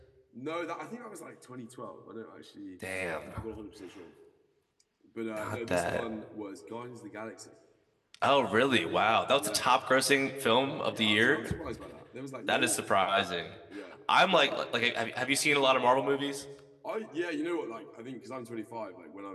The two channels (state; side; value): identical; both; correlation 1.00